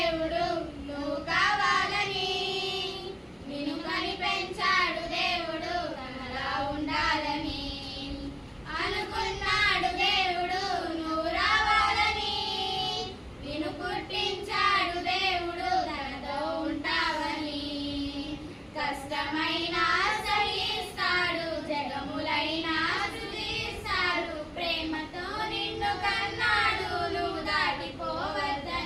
నువ్వు కావాలని, నిన్ను కని పెంచాడు దేవుడు తనలా ఉండాలని. అనుకున్నాడు దేవుడు నువ్వు రావాలని, నిన్ను పుట్టించాడు దేవుడు తనతో ఉంటావని. కష్టమైన సహిస్తాడు, జగములైనా స్తుతిస్తాడు, ప్రేమతో నిన్ను కన్నాడు నువ్వు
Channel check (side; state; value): both; identical; correlation 1.00